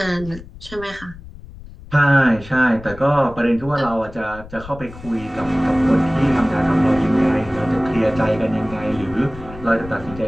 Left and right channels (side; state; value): left; noise; rumble, 16 dB below the sound